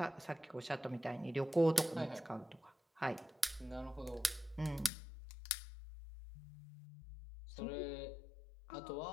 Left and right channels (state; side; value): drops out; right; at 4.9 s